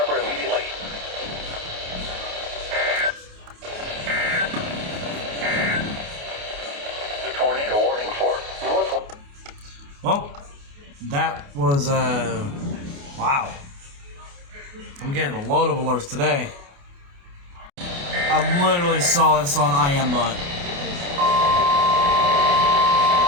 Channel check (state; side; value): late; left; 28 ms